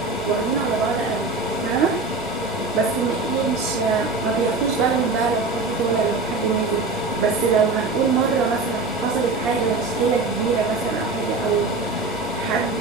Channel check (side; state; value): left; quieter; 3.8 dB